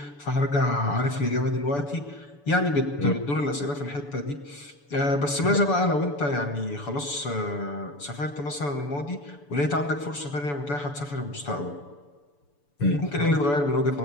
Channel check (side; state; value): right; late; 6.9 ms